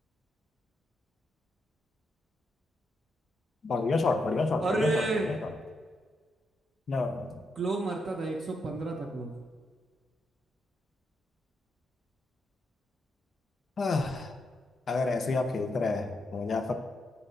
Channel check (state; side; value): normal; both; correlation 0.82